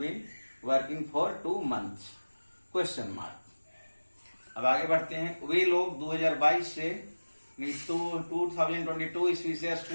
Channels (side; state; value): both; inverted; correlation -1.00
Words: working for 2 months question mark. अब आगे बढ़ते हैं। वे लोग 2022 से 2022 ईस्वी से